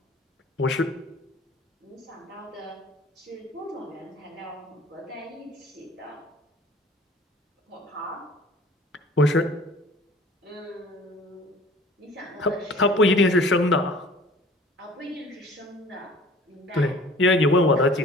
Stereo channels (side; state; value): both; normal; correlation 0.48